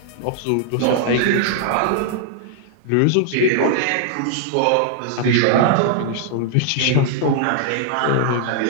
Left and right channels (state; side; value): different; both; correlation -0.01